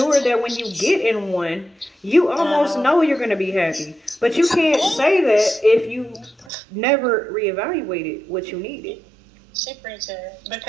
that when you get in one, you almost know you're going to be happy. But you can't say that if you never reevaluated what you needed. She preaching.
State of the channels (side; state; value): left; drops out; at 6.5 s